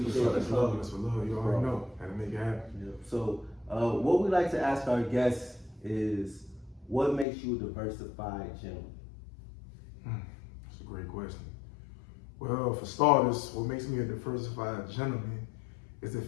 it. That's love. That's for love. You already know. Had to make it happen. Yeah. So, what we like to ask our guests is, what makes you a diversified gentleman? That's a great question. Well, for starters, what makes me a diversified gentleman is the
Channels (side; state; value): right; drops out; at 7.2 s